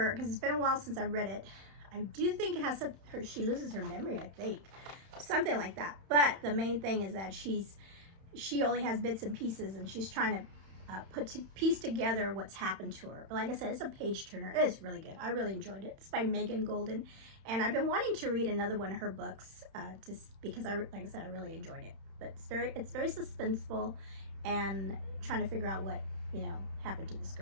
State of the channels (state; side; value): late; left; 31 ms